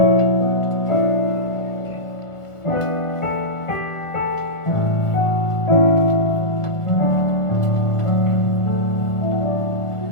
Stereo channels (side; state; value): right; late; 1.4 ms